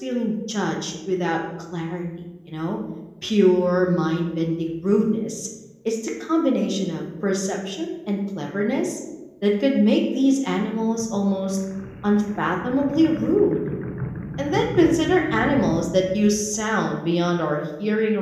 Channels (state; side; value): identical; both; correlation 1.00